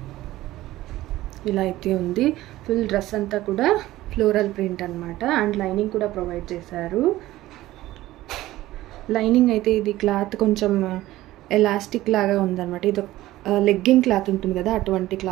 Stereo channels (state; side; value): quieter; left; 16.2 dB